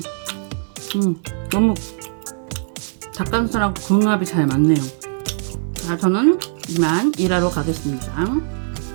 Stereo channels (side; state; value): left; silent; 58 dB below the other